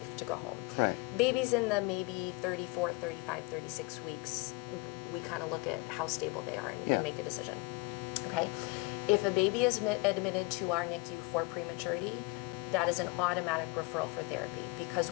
to go home. Right. Babies in the maybe 34, 35, 36 weeks, we kind of look at how stable they are and make a decision. Okay? If a baby is admitted to our NICU for prematurity, that is an automatic referral for therapy, because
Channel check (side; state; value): right; quieter; 25.3 dB